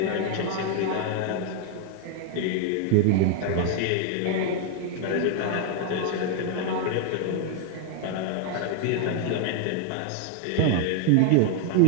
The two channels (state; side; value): different; both; correlation 0.00